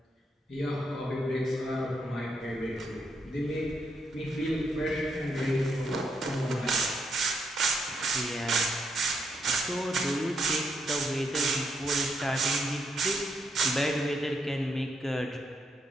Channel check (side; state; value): both; normal; correlation 0.78